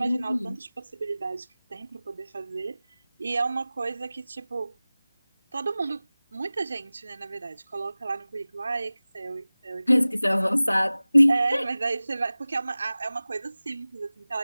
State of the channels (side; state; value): both; inverted; correlation -0.98